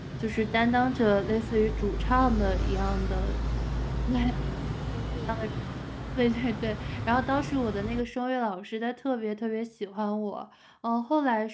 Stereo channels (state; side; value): identical; both; correlation 1.00